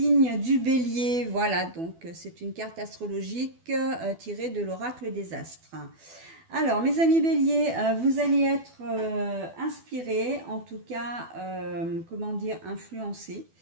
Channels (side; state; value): left; late; 12 ms